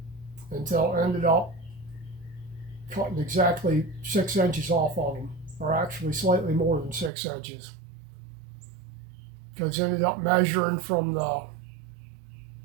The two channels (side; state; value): left; drops out; at 7.1 s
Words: until it ended up cutting exactly 6 inches off of them, or actually slightly more than 6 inches. Because it ended up measuring from the